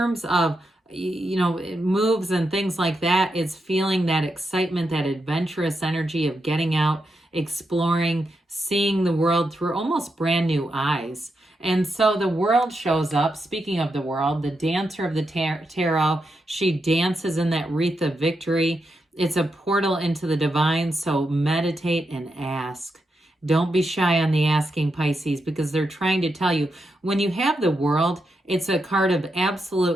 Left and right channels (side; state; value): both; normal; correlation 0.85